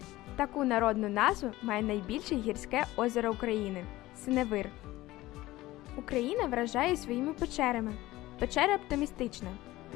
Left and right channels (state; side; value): quieter; right; 17.5 dB